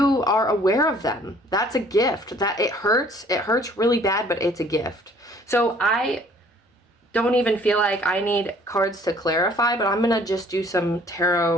are aware of them. That's a gift. That it hurts really bad, but it's a gift. So I don't even feel like I need cards to clarify, but I'm gonna just do some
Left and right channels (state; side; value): normal; both; correlation 0.57